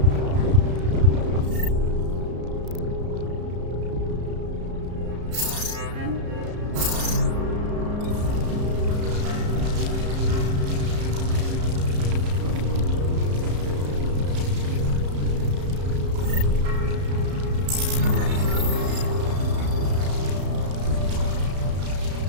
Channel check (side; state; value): left; late; 34 ms